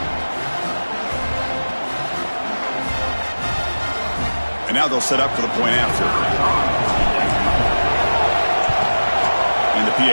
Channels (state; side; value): inverted; both; correlation -1.00